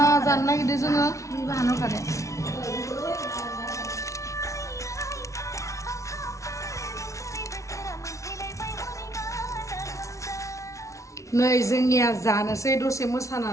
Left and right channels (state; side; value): late; right; 0.15 ms